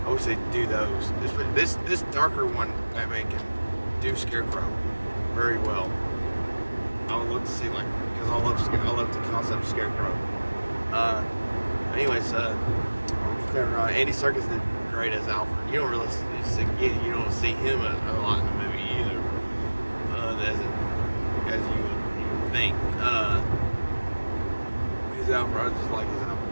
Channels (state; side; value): inverted; both; correlation -1.00